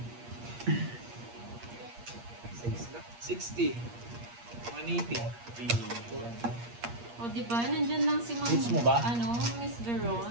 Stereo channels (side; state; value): left; late; 8.5 ms